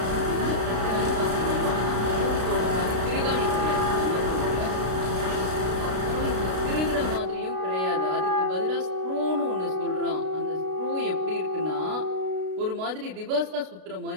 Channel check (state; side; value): late; left; 32 ms